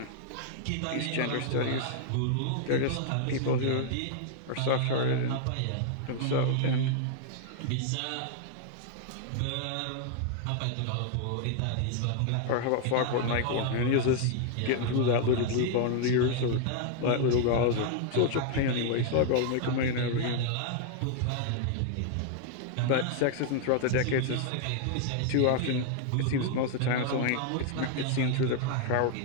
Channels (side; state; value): both; different; correlation 0.00